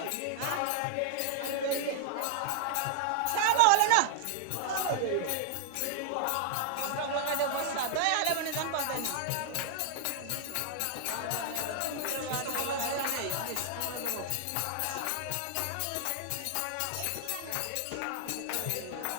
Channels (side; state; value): both; different; correlation 0.00